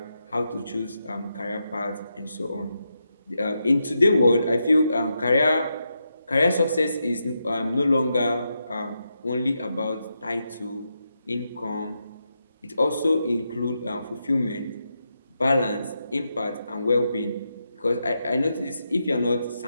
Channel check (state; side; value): inverted; both; correlation -0.85